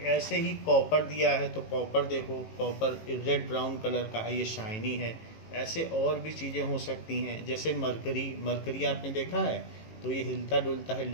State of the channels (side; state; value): right; late; 18 ms